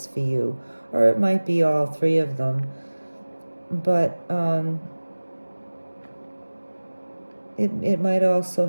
for you. Or it might be all three of them. But it might also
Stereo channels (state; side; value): inverted; both; correlation -1.00